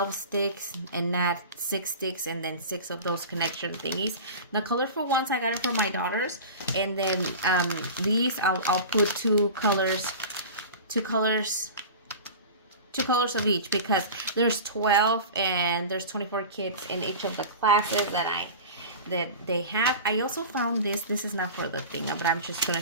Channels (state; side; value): inverted; both; correlation -0.33